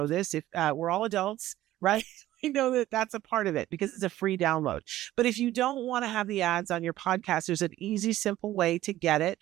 this. If we're all adults, right? I know that that's a part of it because it's a free download. But if you don't want to have the ads on your podcast, there's an easy, simple way to get it.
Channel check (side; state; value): left; quieter; 14.6 dB